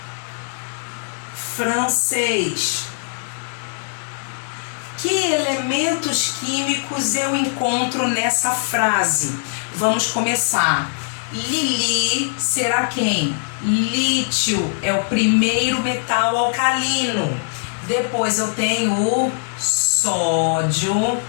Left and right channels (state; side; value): silent; right; digital silence